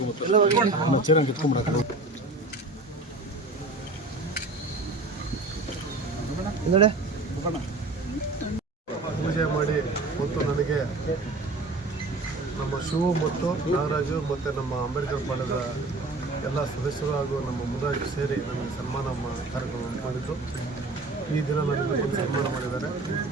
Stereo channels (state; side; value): quieter; left; 3.0 dB